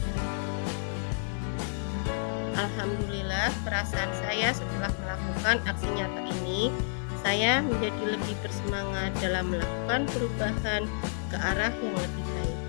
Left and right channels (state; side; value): silent; right; digital silence